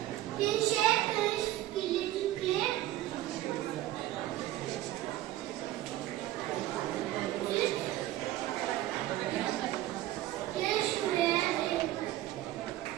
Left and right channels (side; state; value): left; quieter; 14.9 dB